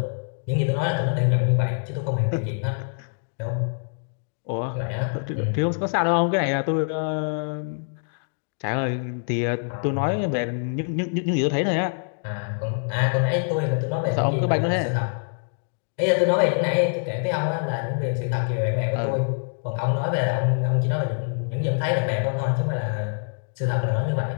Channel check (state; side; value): silent; right; digital silence